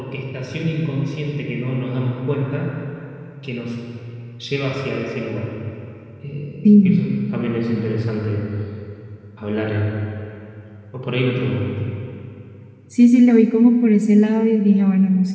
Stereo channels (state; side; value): identical; both; correlation 1.00